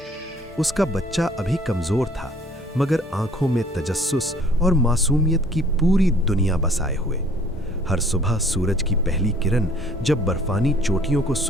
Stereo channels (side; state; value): both; normal; correlation 0.56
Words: उसका बच्चा अभी कमजोर था, मगर आंखों में तजस्सुस और मासूमियत की पूरी दुनिया बसाए हुए। हर सुबह सूरज की पहली किरण जब बर्फानी चोटियों को